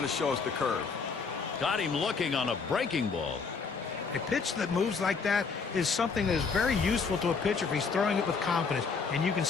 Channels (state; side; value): quieter; right; 5.1 dB